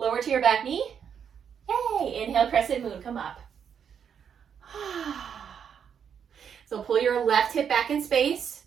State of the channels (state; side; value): quieter; left; 7.7 dB